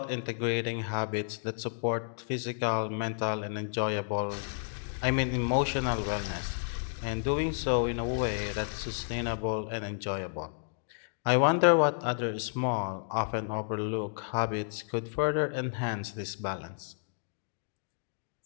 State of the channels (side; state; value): right; silent; digital silence